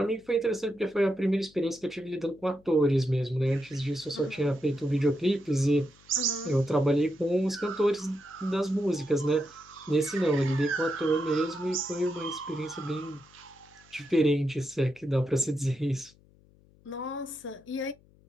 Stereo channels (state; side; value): noise; left; hum, 29 dB below the sound